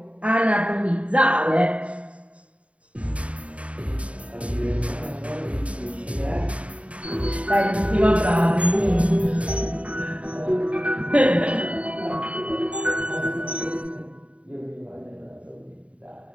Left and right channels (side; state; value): left; late; 0.064 ms